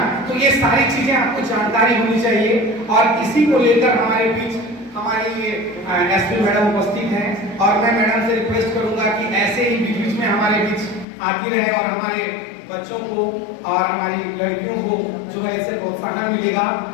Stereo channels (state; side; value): drops out; right; at 11.1 s